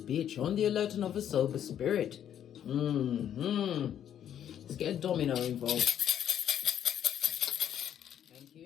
on the alert and of a sober spirit. Let's get a domino involved. Thank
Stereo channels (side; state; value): right; quieter; 10.0 dB